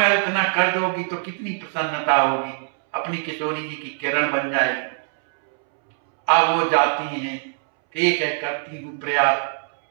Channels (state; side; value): silent; left; 64 dB below the other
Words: इतना कर दोगी तो कितनी प्रसन्नता होगी, अपनी किशोरी जी की किरण बन जाएगी। अब वो जाती हैं, ठीक है करती हूँ प्रयास।